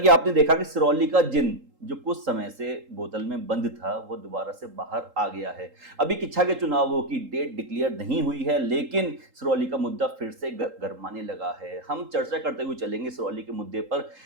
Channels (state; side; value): late; left; 3.8 ms